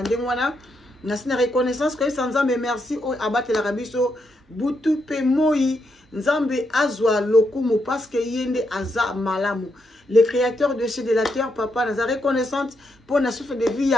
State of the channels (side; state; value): both; normal; correlation 0.81